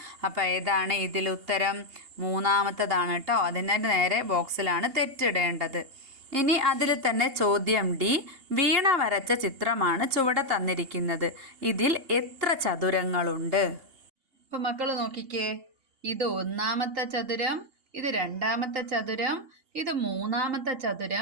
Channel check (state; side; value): late; left; 2.8 ms